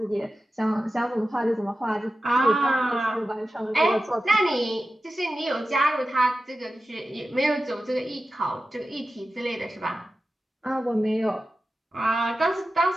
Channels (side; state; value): both; normal; correlation 0.93